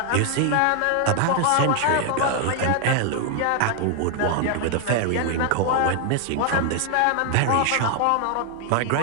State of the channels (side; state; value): both; different; correlation 0.00